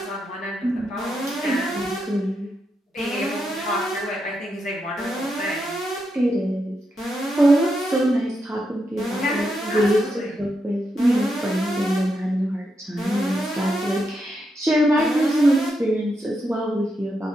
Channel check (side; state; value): both; normal; correlation 0.83